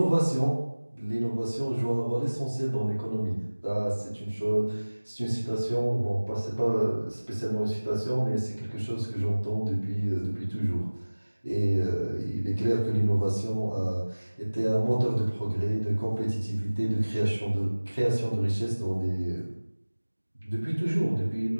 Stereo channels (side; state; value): both; inverted; correlation -1.00